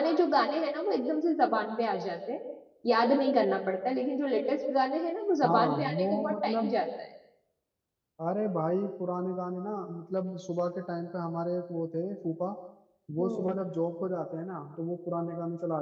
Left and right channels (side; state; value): both; identical; correlation 1.00